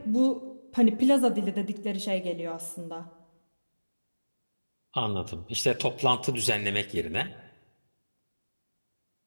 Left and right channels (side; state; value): both; inverted; correlation -1.00